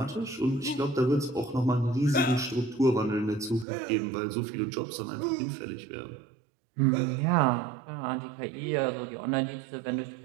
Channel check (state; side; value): drops out; left; at 3.7 s